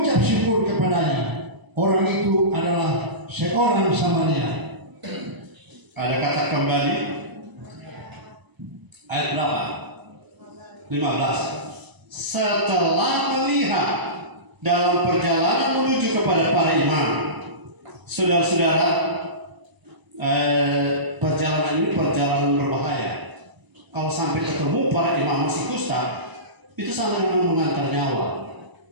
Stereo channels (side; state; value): left; late; 1.0 ms